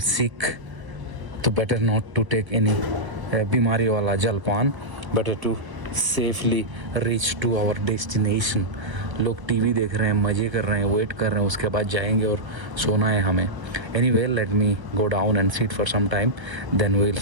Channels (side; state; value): left; late; 1.0 ms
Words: sick. तो better not to take any बीमारी वाला जलपान, better to safely reach to our destination. लोग TV देख रहे हैं, मज़े कर रहे हैं, वेट कर रहे हैं, उसके बाद जाएंगे और सोना है हमें. Anyway, let me go down and sit for some time, then we will